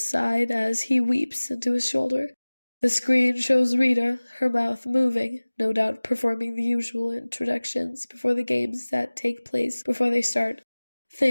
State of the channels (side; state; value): both; inverted; correlation -1.00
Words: side as he weeps into his shoulder. The screen shows Rita, her mouth moving, no doubt performing the usual introductions before the games that take place before they start.